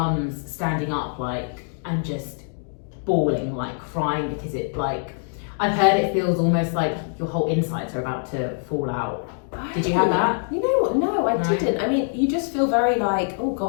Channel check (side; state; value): right; silent; 60 dB below the other